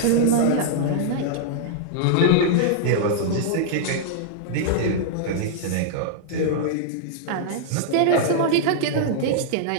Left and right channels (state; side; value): different; both; correlation -0.02